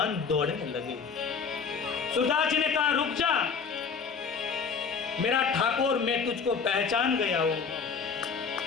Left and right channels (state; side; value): quieter; right; 5.7 dB